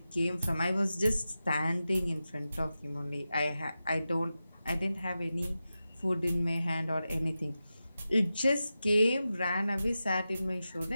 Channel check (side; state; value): both; inverted; correlation -0.92